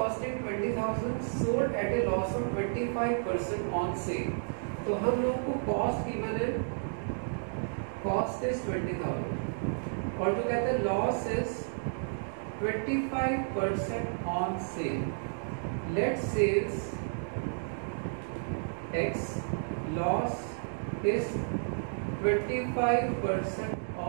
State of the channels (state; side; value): silent; left; digital silence